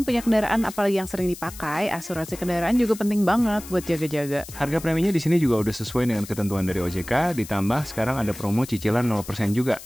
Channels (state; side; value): noise; left; hiss, 15 dB below the sound